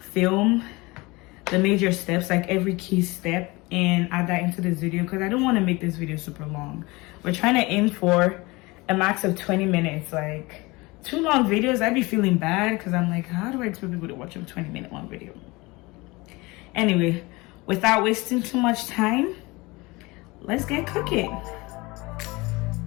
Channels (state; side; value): quieter; right; 23.5 dB